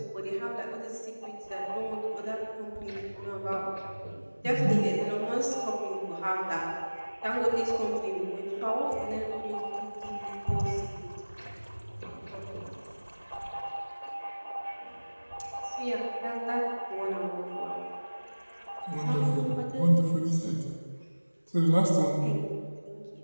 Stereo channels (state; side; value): inverted; both; correlation -1.00